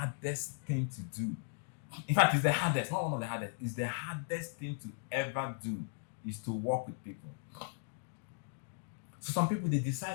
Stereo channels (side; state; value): right; silent; digital silence